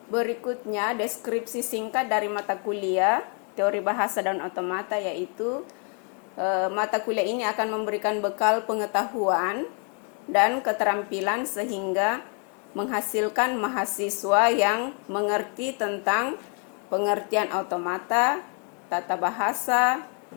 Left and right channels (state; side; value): quieter; right; 39.6 dB